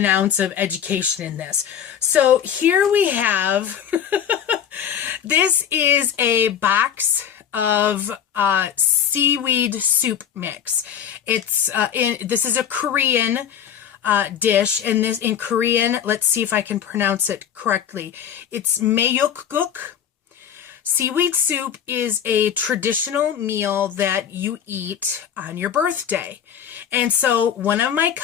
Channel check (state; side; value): quieter; right; 8.9 dB